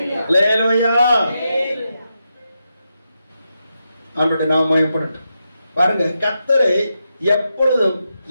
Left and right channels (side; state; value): both; inverted; correlation -0.86